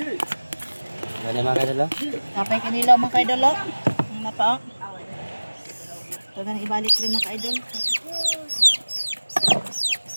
Gani mga kaidol. Kapay kanila mga kaidolo. Ang napa. Ito na ibalik rin mga kaidol.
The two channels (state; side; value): inverted; both; correlation -1.00